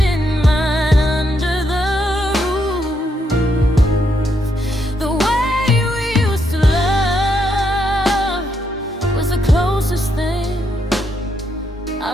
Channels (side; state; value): both; normal; correlation 0.78